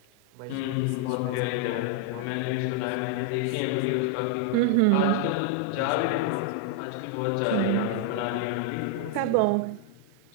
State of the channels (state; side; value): different; both; correlation 0.00